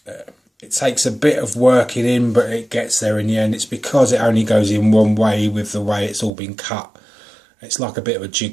It takes a bit of working in, but it gets there in the end. It's because it only goes in one way with the way it's all been cut. It's like a bit of a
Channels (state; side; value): drops out; left; at 6.3 s